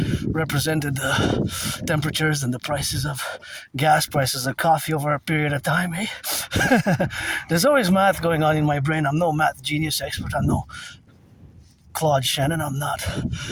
represented the temperatures and the prices of gas, prices of coffee over a period of time, eh? There's always math going on in my brain. I'm no math genius expert. I'm no Claude Shannon. I'm not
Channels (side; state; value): both; identical; correlation 1.00